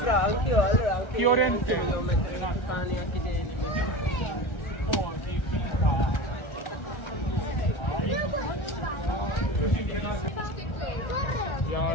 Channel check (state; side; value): late; right; 1.3 ms